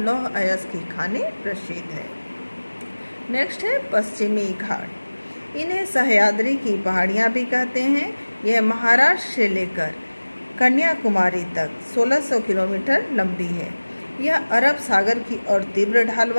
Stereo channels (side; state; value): both; inverted; correlation -1.00